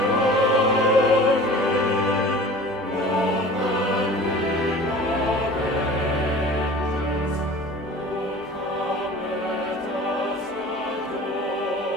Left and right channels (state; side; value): normal; both; correlation 0.42